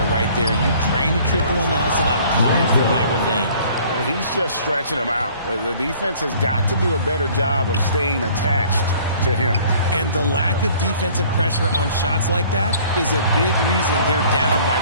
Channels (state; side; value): inverted; both; correlation -0.54